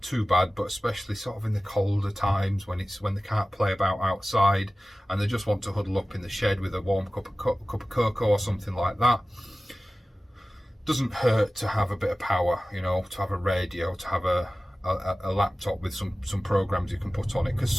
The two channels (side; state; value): both; normal; correlation 0.97